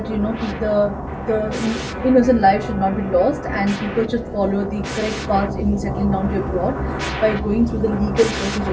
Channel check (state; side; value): identical; both; correlation 1.00